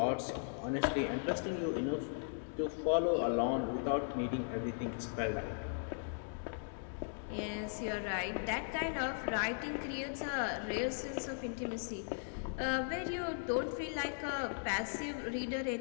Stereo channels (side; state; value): right; silent; digital silence